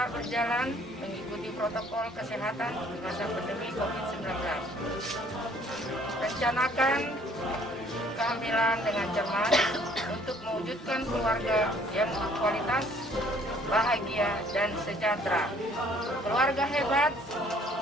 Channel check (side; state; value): both; normal; correlation 0.59